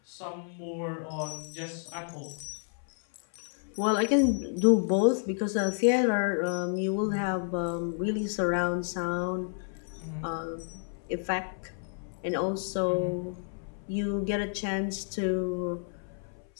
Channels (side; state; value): right; silent; 58 dB below the other